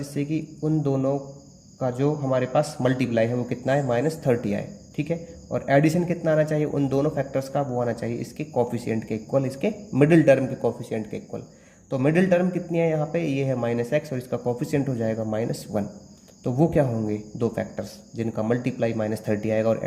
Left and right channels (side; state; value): both; identical; correlation 1.00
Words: कि उन दोनों का जो हमारे पास मल्टीप्लाई है वो कितना है, -30 आए। ठीक है, और एडिशन कितना आना चाहिए, उन दोनों फैक्टर्स का वो आना चाहिए इसके कोफिशिएंट के इक्वल, इसके मिडिल टर्म के कोफिशिएंट के इक्वल। तो मिडिल टर्म कितनी है यहाँ पे, ये है -x और इसका कोफिशिएंट हो जाएगा -1। तो वो क्या होंगे, दो फैक्टर्स जिनका मल्टीप्लाई -30 आएगा और